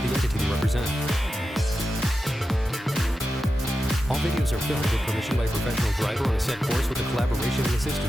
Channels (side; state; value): both; normal; correlation 0.91